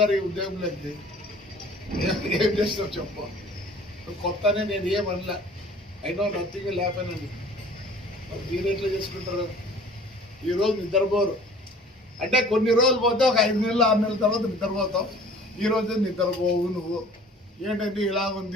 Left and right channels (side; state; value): both; normal; correlation 0.49